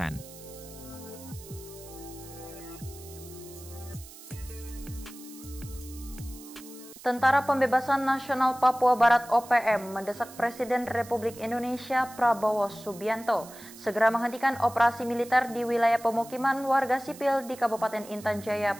Tentara Pembebasan Nasional Papua Barat OPM mendesak Presiden Republik Indonesia Prabowo Subianto segera menghentikan operasi militer di wilayah pemukiman warga sipil di Kabupaten Intan Jaya,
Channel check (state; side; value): noise; right; hiss, 18 dB below the sound